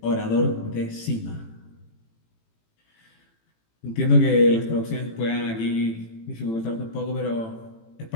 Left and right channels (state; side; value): late; right; 18 ms